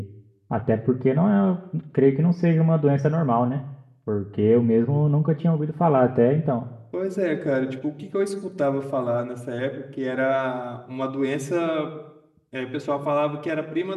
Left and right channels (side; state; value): both; identical; correlation 1.00